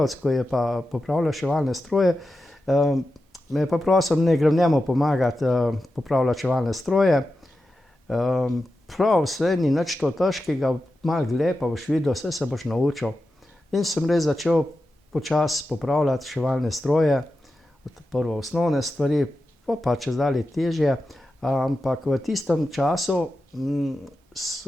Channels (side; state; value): both; normal; correlation 0.91